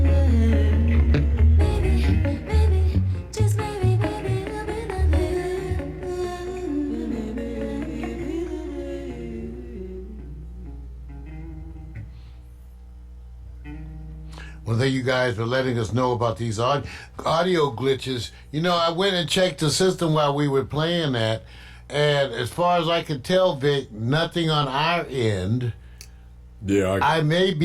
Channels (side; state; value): both; identical; correlation 1.00